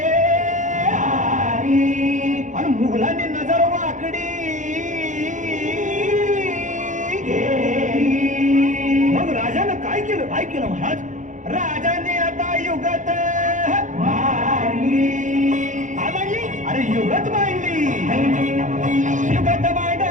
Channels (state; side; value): late; left; 0.36 ms